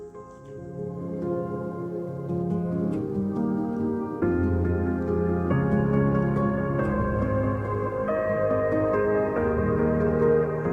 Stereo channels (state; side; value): identical; both; correlation 1.00